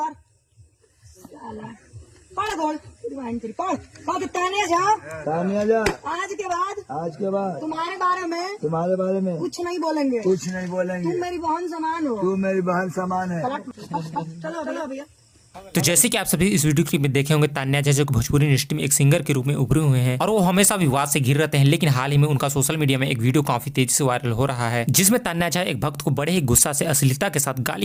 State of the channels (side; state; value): both; identical; correlation 1.00